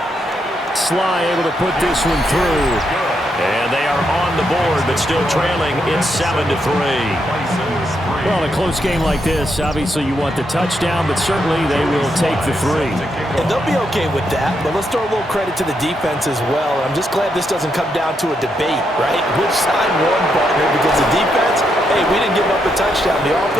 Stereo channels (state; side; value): normal; both; correlation 0.80